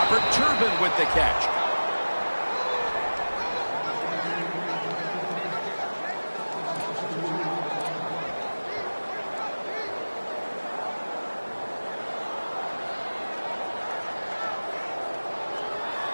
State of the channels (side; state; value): both; inverted; correlation -1.00